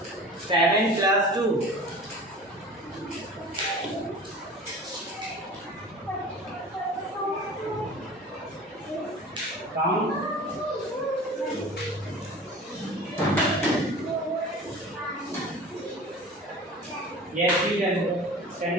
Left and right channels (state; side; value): normal; both; correlation 0.39